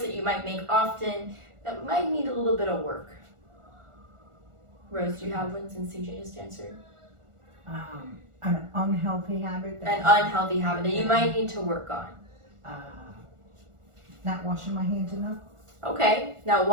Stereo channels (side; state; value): left; late; 1.4 ms